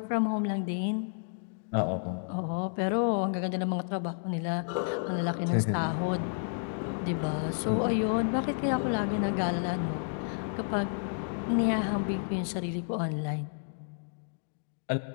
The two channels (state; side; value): silent; right; digital silence